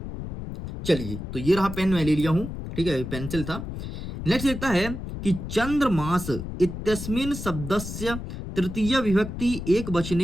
चलिए, तो ये रहा पेन, मैं ले लिया हूं। ठीक है, पेंसिल था। नेक्स्ट देखता है कि चंद्रमास इत्यस्मिन् शब्दस्य तृतीय विभक्ति एक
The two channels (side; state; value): left; noise; rumble, 8 dB below the sound